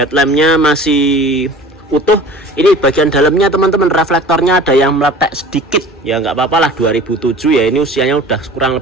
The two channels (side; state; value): both; normal; correlation 0.42